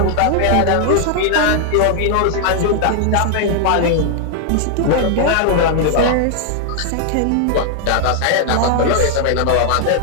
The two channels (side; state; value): both; different; correlation 0.00